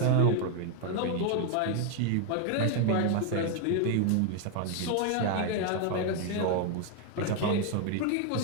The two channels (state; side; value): different; both; correlation 0.00